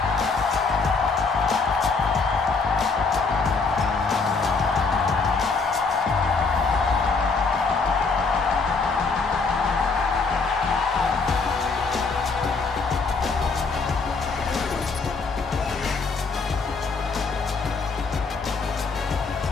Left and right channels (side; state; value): right; quieter; 4.4 dB